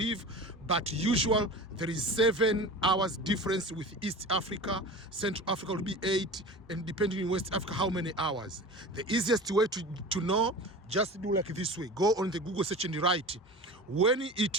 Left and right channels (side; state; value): both; normal; correlation 0.34